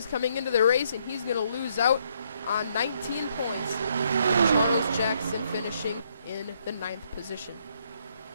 coming into the race, and he's going to lose out on 19 points. Charles Jackson finishing in the 9th position.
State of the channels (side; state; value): both; inverted; correlation -0.71